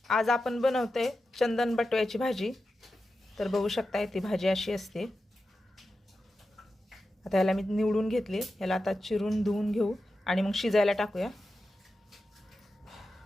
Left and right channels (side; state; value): both; normal; correlation 0.91